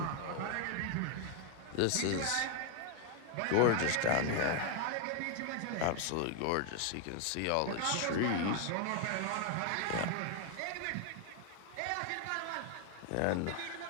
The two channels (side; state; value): both; different; correlation 0.01